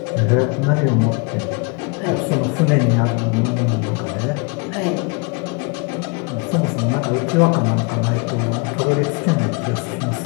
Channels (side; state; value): right; quieter; 30.6 dB